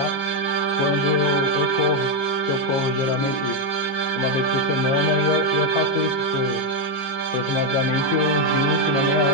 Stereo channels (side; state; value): right; late; 15 ms